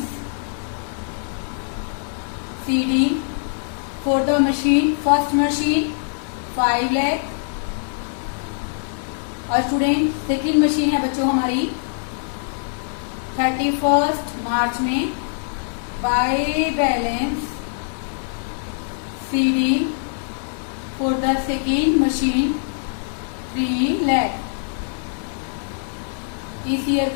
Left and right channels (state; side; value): silent; right; digital silence